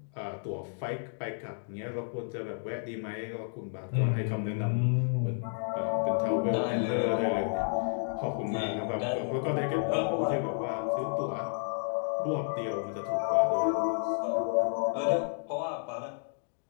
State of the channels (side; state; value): right; silent; digital silence